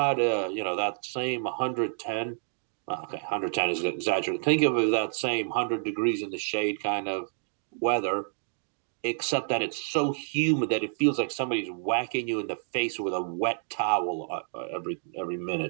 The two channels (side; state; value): left; silent; digital silence